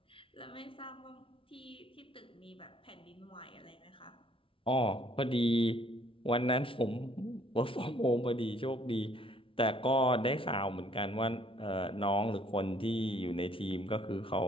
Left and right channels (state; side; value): late; right; 0.25 ms